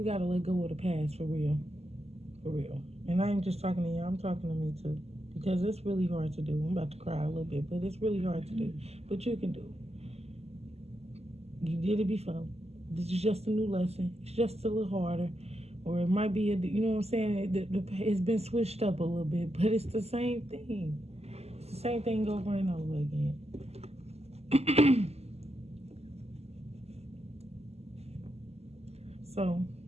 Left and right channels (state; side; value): late; left; 0.30 ms